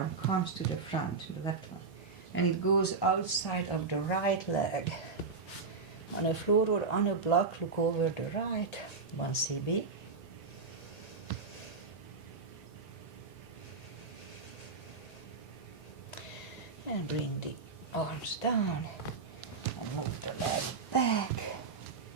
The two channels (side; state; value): left; quieter; 4.5 dB